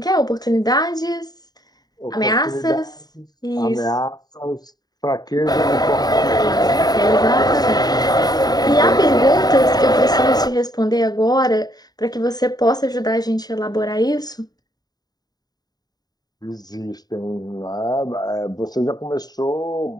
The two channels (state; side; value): late; right; 0.19 ms